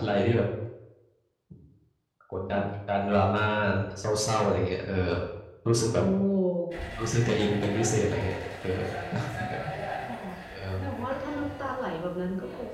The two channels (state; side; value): identical; both; correlation 1.00